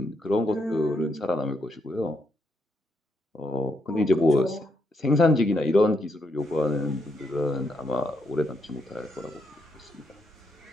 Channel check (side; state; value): both; normal; correlation 0.78